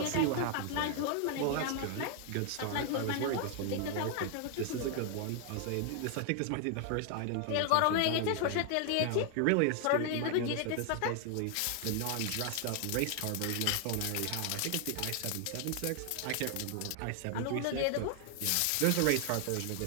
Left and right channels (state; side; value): different; both; correlation 0.00